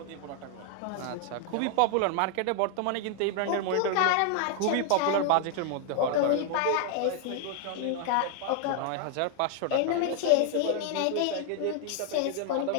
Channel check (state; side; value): different; both; correlation 0.00